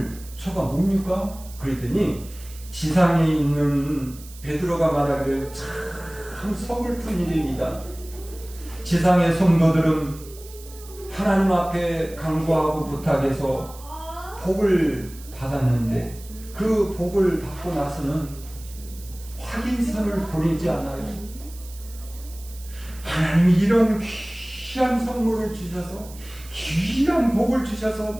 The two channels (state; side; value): noise; right; hiss, 19 dB below the sound